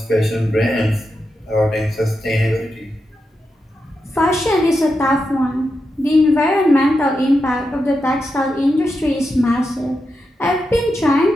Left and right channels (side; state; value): both; normal; correlation 0.87